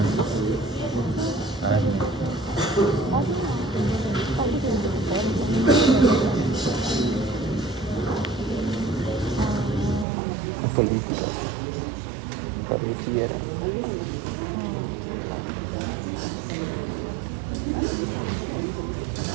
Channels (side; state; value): left; drops out; at 10.1 s